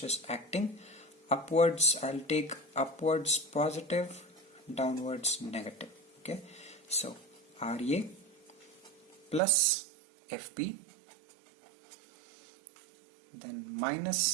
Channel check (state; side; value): drops out; left; at 9.4 s